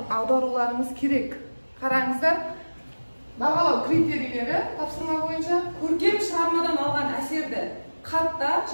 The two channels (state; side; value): inverted; both; correlation -1.00